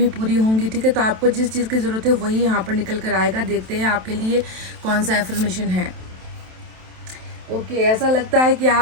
पूरी होंगी, ठीक है। तो आपको जिस चीज़ की ज़रूरत है वही यहाँ पर निकल कर आएगा। देखते हैं आपके लिए कौन सा एफर्मेशन है। ओके, ऐसा लगता है कि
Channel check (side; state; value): left; late; 27 ms